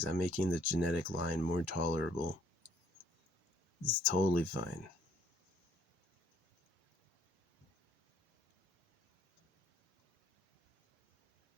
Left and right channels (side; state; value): both; normal; correlation 0.62